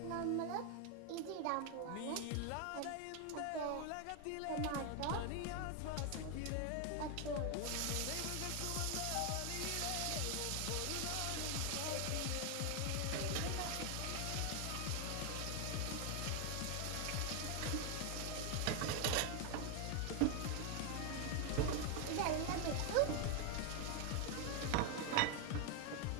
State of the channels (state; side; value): different; both; correlation 0.01